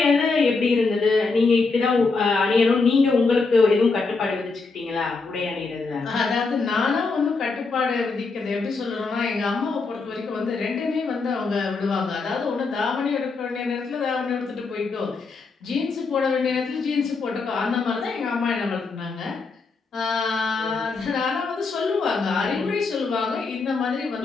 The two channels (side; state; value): right; quieter; 4.2 dB